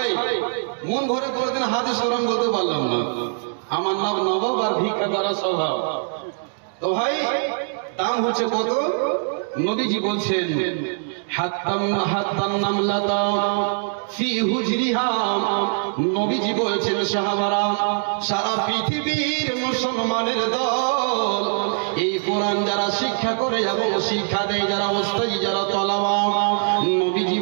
মন ভরে কোনদিন হাদিস কোরআন বলতে পারলাম না, আমার নাম নবাব আর ভিক্ষা করা স্বভাব। তো ভাই দাম হচ্ছে কত? নবীজি বলছেন নবীজি বলছেন সাহাবারা, সারা পৃথিবীর মুসলমানের দল এই কোরআন যারা শিক্ষা করে এবং শিক্ষা দেয়, যারা ওস্তাদি, যারা তলাবা, নবীজি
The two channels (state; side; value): silent; left; digital silence